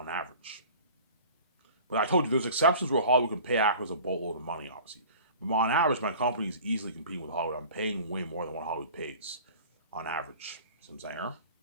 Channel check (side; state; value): both; inverted; correlation -0.43